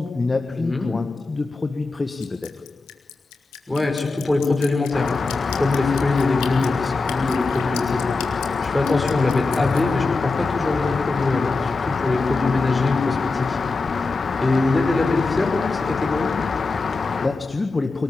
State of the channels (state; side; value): quieter; right; 3.7 dB